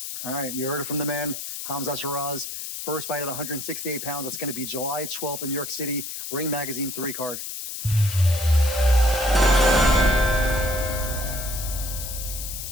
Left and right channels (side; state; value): left; noise; hiss, 7 dB below the sound